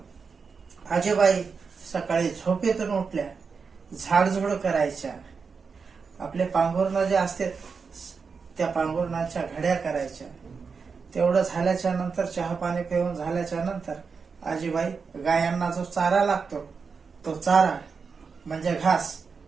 आजीबाई सकाळी झोपेतून उठल्या, झाडझुड करायच्या, आपले पांघरुण जे असते त्या पांघरुणाच्या घड्या करायच्या. तेवढं झाल्याच्या नंतर चहा पाणी पिऊन झाल्याच्या नंतर आजीबाई गायांना जो चारा लागतो तो चारा म्हणजे घास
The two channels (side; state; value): left; quieter; 5.3 dB